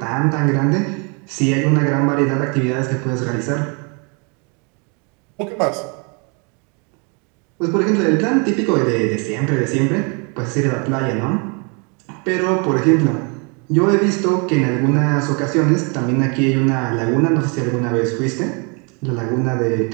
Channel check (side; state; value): left; quieter; 34.3 dB